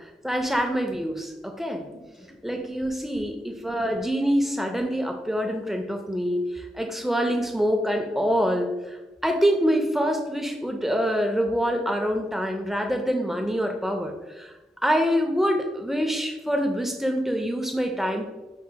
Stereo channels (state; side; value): normal; both; correlation 0.86